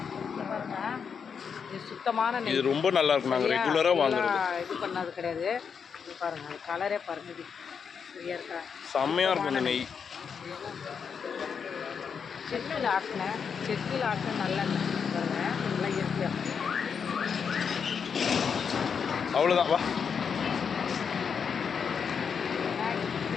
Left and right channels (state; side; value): quieter; right; 6.5 dB